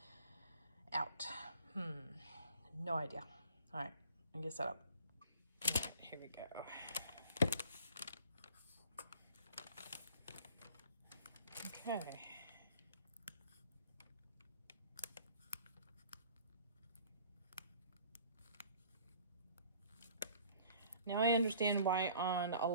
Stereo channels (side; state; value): both; inverted; correlation -0.51